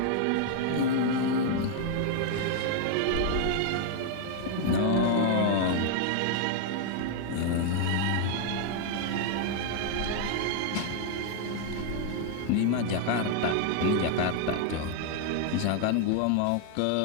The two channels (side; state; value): both; different; correlation 0.00